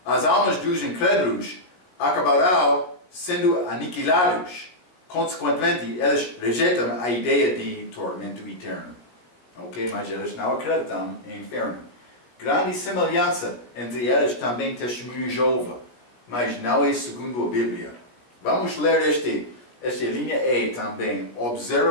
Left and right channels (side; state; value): right; late; 16 ms